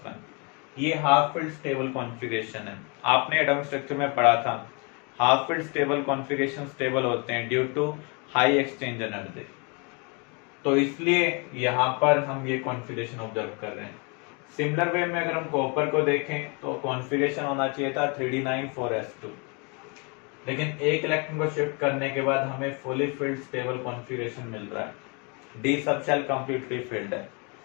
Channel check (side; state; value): right; quieter; 32.9 dB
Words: ये हाफ फिल्ड स्टेबल कॉन्फ़िगरेशन है। आपने एटॉमिक स्ट्रक्चर में पढ़ा था, half filled stable configuration stable होते हैं due to high exchange energy. तो इसलिए यहां पर हम ये कॉन्फ़िगरेशन ऑब्जर्व कर रहे हैं। सिमिलर वे में अगर हम कॉपर को देखें तो कॉन्फ़िगरेशन होना चाहिए था 3d9 4s2, लेकिन एक इलेक्ट्रॉन को शिफ्ट करने के बाद हमें फुली फिल्ड स्टेबल कॉन्फ़िगरेशन मिल रहा है। D sub shell completely filled है।